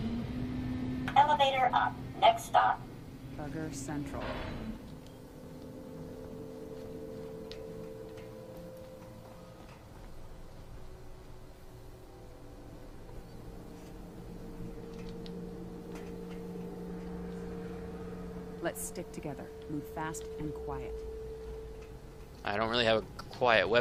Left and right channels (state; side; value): identical; both; correlation 1.00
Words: Elevator up. Next stop. Bugger Central. Let's stick together. Move fast and quiet. I don't really have a quiet